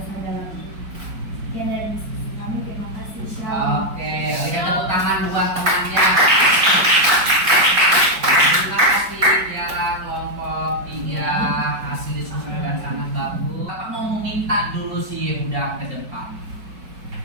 dalam Tuhan. Sekian dari diskusi kami, terima kasih. Shalom. Oke, berikan tepuk tangan buat temannya. Terima kasih Tiara, kelompok 3, hasil diskusi dengan sangat bagus. Kita mau meminta dulu sih udah ke depan.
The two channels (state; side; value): late; left; 4.9 ms